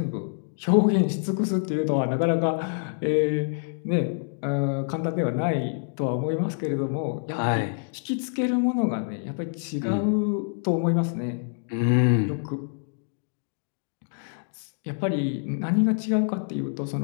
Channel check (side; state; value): right; silent; digital silence